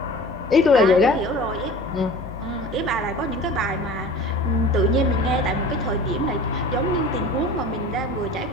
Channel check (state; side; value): normal; both; correlation 0.40